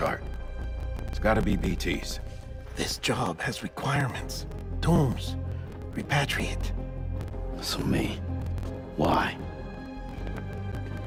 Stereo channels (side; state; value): both; identical; correlation 1.00